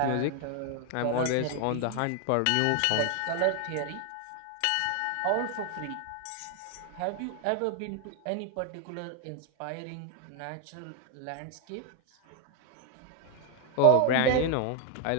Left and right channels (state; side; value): different; both; correlation 0.00